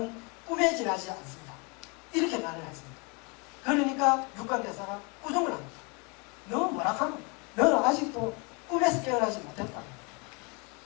꿈에 지나지 않습니다. 이렇게 말을 했습니다. 그러니까 육관대사가 꾸중을 합니다. 너 뭐라 하노? 너는 아직도 꿈에서 깨어나지 못했다.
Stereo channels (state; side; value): quieter; right; 31.4 dB